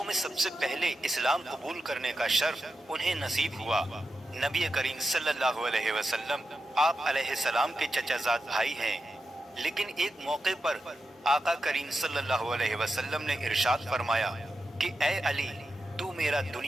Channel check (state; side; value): normal; both; correlation 0.90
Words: में सबसे पहले इस्लाम कबूल करने का शर्फ उन्हें नसीब हुआ। नबी करीम सल्लल्लाहु अलैहि वसल्लम आप अलैहिस्सलाम के चचाजाद भाई हैं, लेकिन एक मौके पर आका करीम सल्लल्लाहु अलैहि वसल्लम ने इरशाद फरमाया कि ए अली, तू मेरा